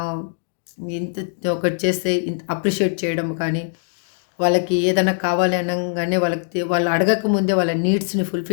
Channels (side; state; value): right; silent; 65 dB below the other